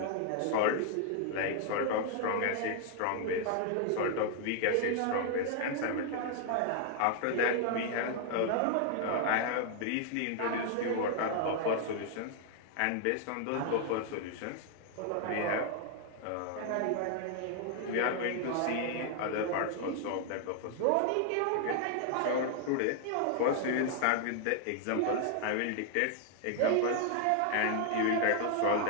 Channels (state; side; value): different; both; correlation 0.00